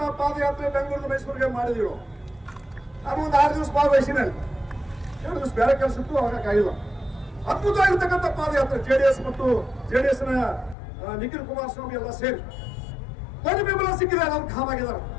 ಪಾದಯಾತ್ರೆ ಬೆಂಗಳೂರು ಮೈಸೂರಿಗೆ ಮಾಡಿದಿರು. ನಾನು ಒಂದು 6 ದಿವಸ ಭಾಗವಹಿಸಿನಲ್ಲಿ, 2 ದಿವಸ ಬೇರೆ ಕೆಲಸ ಇತ್ತು, ಹೋಗಕ್ಕಾಗಿಲ್ಲ. ಅದ್ಭುತವಾಗಿರ್ತಕ್ಕಂಥ ಪಾದಯಾತ್ರೆ JDS ಮತ್ತು JDS ನ ನಿಖಿಲ್ ಕುಮಾರಸ್ವಾಮಿ ಎಲ್ಲ ಸೇರಿ ದೊಡ್ಡ ಬೆಂಬಲ ಸಿಕ್ಕಿದೆ. ಅವ್ರು ಗಾಮ್ ಆಗಿದಾರ,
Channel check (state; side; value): drops out; right; at 10.8 s